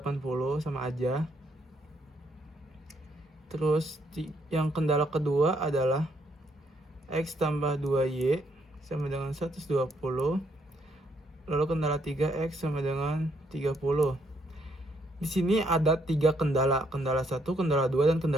sama aja. Terus yang kendala kedua adalah X tambah 2Y sama dengan 120. Lalu kendala 3X sama dengan 30. Di sini ada 3 kendala. Kendala 1, kendala 2, dan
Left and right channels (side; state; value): both; normal; correlation 0.72